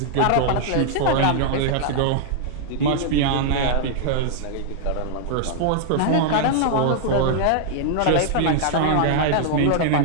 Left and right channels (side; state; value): both; different; correlation -0.01